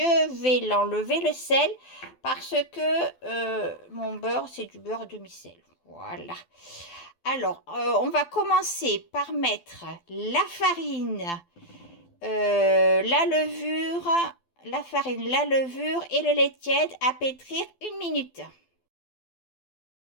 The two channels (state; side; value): late; right; 12 ms